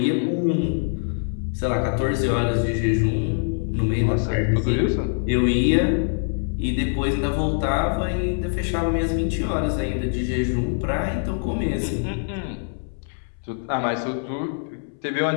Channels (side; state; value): right; silent; 63 dB below the other